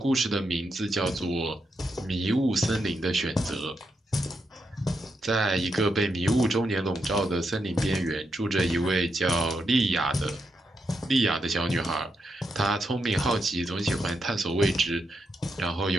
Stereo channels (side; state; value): both; normal; correlation 0.83